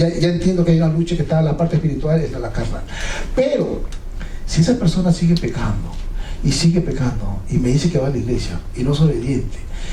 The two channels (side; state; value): both; identical; correlation 1.00